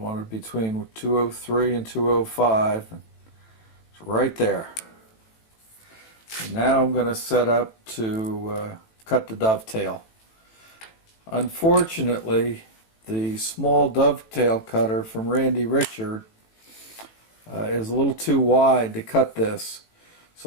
between 203 and 205. It's right there. And now I'm going to set up to cut the dovetail. Unfortunately, the small dovetail cutter from Randy Richard is a little too wide to cut this,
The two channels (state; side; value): late; right; 18 ms